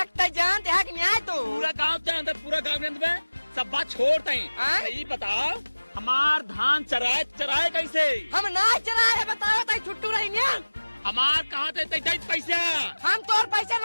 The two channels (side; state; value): both; inverted; correlation -1.00